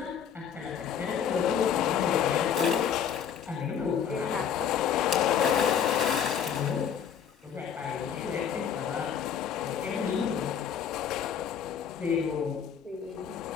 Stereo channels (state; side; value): quieter; right; 8.1 dB